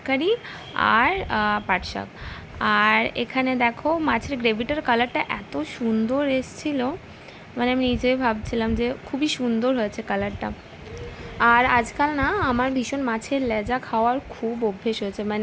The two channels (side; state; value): both; identical; correlation 1.00